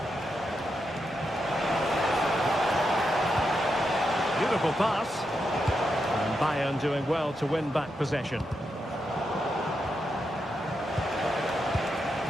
Beautiful pass. And Bayern doing well to win back possession.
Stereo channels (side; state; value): both; normal; correlation 0.85